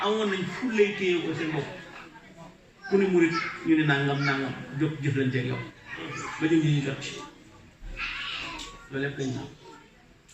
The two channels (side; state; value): both; identical; correlation 1.00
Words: amoon nañ fullay téye ko seen bopp ku ne murid ñu ne nangam jóg jëflanteeg yow ba ñu ñu jot ci loolu lépp lañ naan